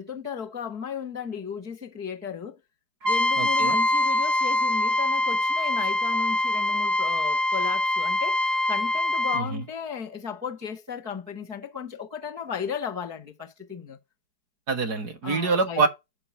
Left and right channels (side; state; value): left; late; 4.6 ms